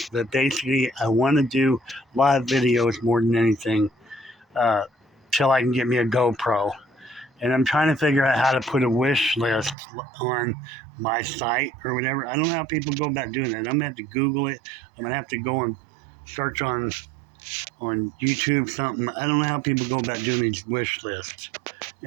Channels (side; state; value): left; drops out; at 9.8 s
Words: But basically, I want to do live videos more than anything till I can get me a GoPro. And I'm trying to figure out how to put a wish list on my site or whatever. I don't know how people go about doing that. I'm going to have to Google it. I'm going to have to go and search on YouTube something. I don't know how people go about doing these wish lists.